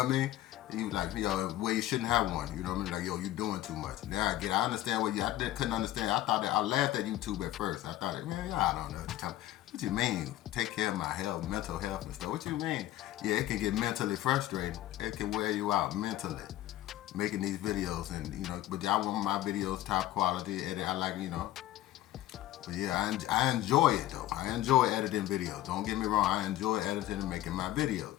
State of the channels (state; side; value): quieter; right; 14.5 dB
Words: I mean? You like, where you shouldn't have one. You know what I mean? Like, you doing too much. Now I understand what couldn't understand. I laughed at YouTube at first. I thought, man, I don't know. What you mean? Take care of my health, mental health and stuff. What you mean? Yeah, it can get mentally frustrating. It can wear you out mentally. Making these videos and but I want my videos top quality. Edit. I like But yeah, I enjoy it though. I enjoy editing videos. Don't get me wrong. I enjoy editing and making my